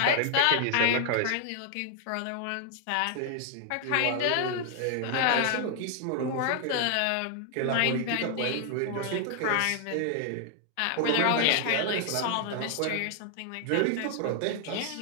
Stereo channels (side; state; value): both; different; correlation 0.00